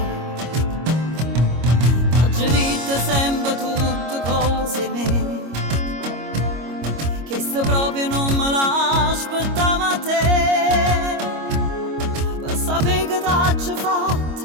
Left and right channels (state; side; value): late; left; 25 ms